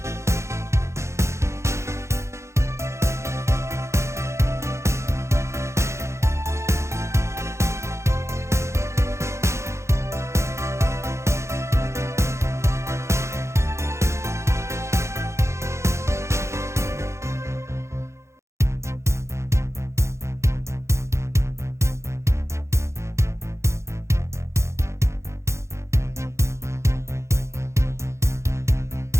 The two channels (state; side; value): late; left; 0.14 ms